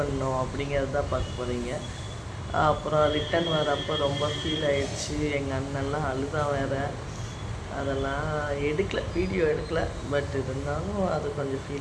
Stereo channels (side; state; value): both; identical; correlation 1.00